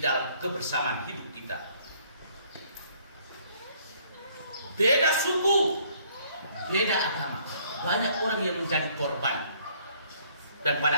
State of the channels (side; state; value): both; inverted; correlation -0.62